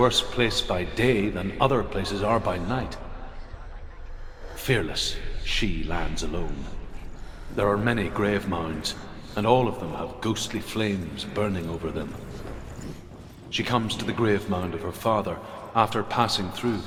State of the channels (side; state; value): both; identical; correlation 1.00